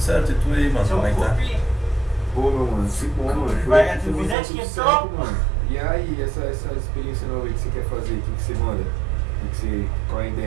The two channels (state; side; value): drops out; left; at 4.4 s